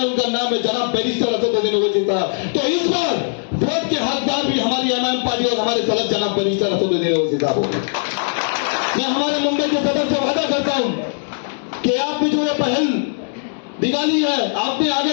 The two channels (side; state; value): right; silent; digital silence